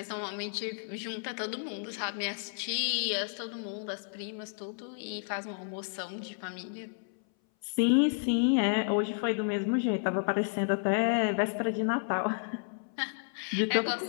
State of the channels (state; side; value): silent; right; 57 dB below the other